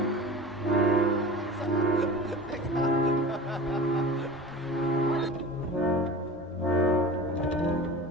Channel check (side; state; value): both; normal; correlation 0.35